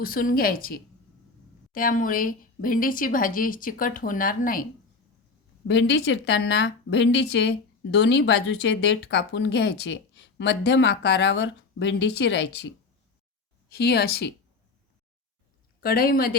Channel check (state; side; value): quieter; right; 4.1 dB